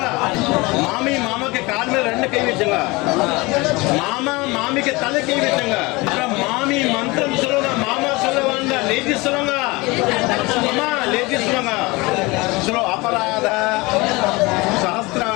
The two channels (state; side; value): quieter; right; 23.8 dB